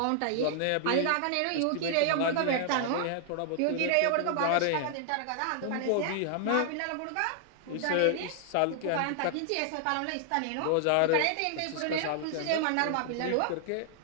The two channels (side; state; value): both; different; correlation 0.00